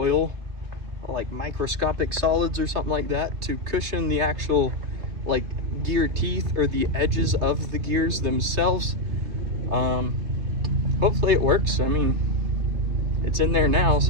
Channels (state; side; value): late; left; 3.3 ms